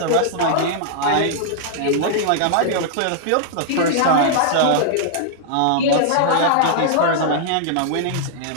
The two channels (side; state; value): both; different; correlation -0.01